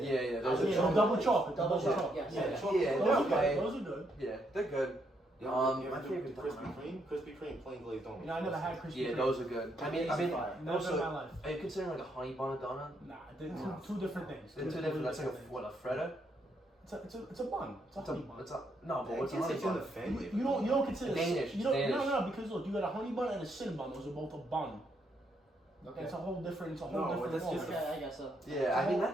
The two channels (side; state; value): both; normal; correlation 0.76